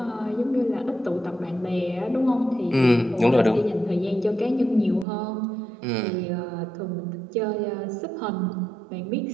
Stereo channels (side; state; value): left; drops out; at 5.1 s